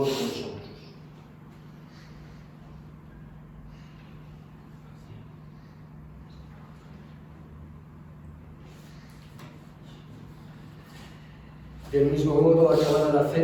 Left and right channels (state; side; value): identical; both; correlation 1.00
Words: vosotros. Del mismo modo, acabada la